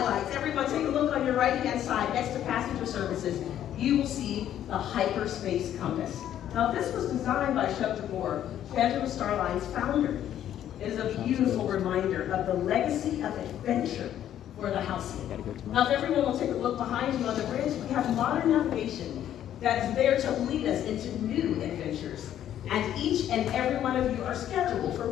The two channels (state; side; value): quieter; right; 11.0 dB